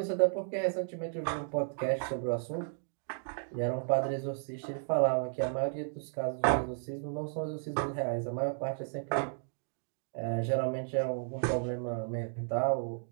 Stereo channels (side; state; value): left; silent; digital silence